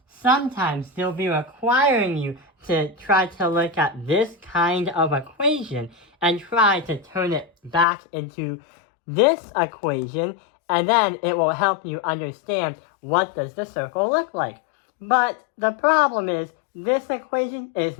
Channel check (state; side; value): drops out; right; at 7.9 s